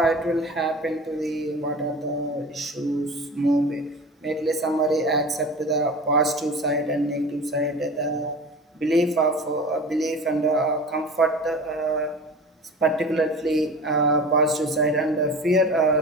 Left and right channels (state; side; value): normal; both; correlation 0.35